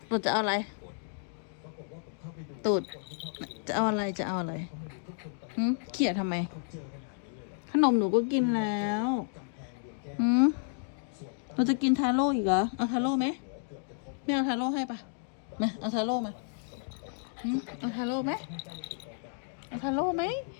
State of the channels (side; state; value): right; silent; digital silence